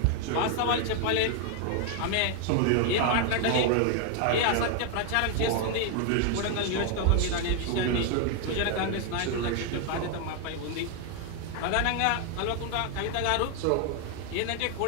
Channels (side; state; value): both; different; correlation 0.01